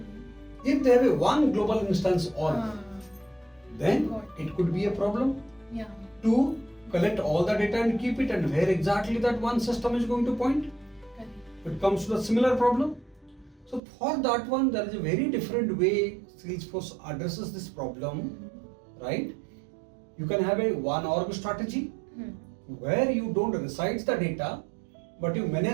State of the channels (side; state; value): left; drops out; at 13.8 s